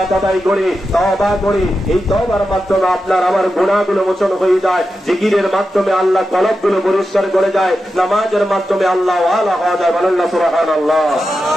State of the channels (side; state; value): both; normal; correlation 0.90